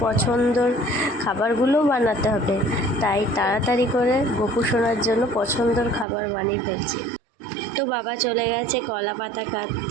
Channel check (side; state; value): left; drops out; at 6.1 s